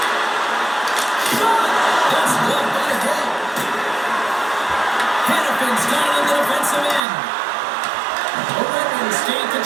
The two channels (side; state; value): left; drops out; at 7.1 s